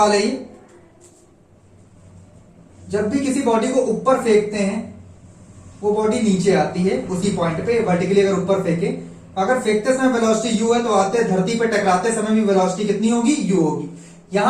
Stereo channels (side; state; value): both; identical; correlation 1.00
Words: है ये। जब भी किसी बॉडी को ऊपर फेंकते हैं वो बॉडी नीचे आती है उसी पॉइंट पे। वर्टिकली अगर ऊपर फेंके, अगर फेंकते समय वेलोसिटी u है तो आते धरती पे टकराते समय भी वेलोसिटी कितनी होगी? u होगी।